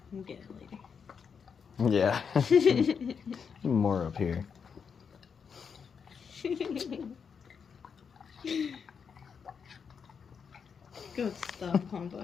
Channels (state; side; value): quieter; right; 6.4 dB